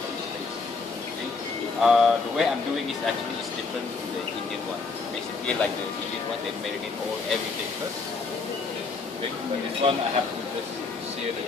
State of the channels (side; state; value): right; quieter; 4.3 dB